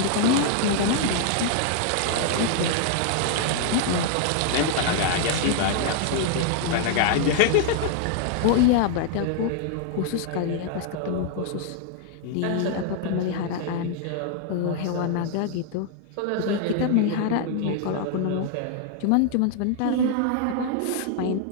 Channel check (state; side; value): different; both; correlation 0.00